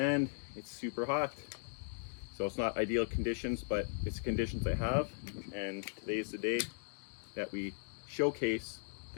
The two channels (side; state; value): right; silent; digital silence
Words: it's super hot. So it's not ideal conditions, but it's conditions I have, and today's the day that we showcase